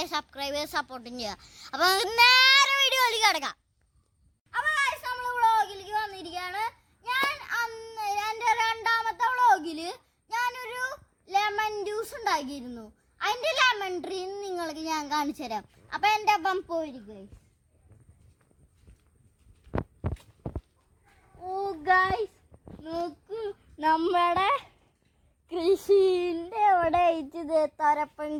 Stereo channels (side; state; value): both; identical; correlation 1.00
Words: സബ്സ്ക്രൈബ് ചെയ്യുക, സപ്പോർട്ടും ചെയ്യുക. അപ്പോൾ നമുക്ക് നേരെ വീഡിയോയിലേക്ക് കിടക്കാം. അപ്പോൾ നമ്മൾ വ്ളോഗിലേക്ക് വന്നിരിക്കുകയാണ്. ഞാൻ എൻ്റെ 2ാമത്തെ വ്ളോഗിൽ ഞാനൊരു ലെമൺ ജ്യൂസ് ഉണ്ടാക്കിയിരുന്നു. അതിൻ്റെ ലെമൺ ട്രീ നിങ്ങൾക്ക് ഞാൻ കാണിച്ചു തരാം. അപ്പോൾ എൻ്റെ അപ്പം പോയിരിക്കും. ഓ ഗൈസ് നോക്കൂ, നമ്മുടെ കൃഷിൻ്റെ അവിടെ അയച്ചത് തൊരപ്പൻ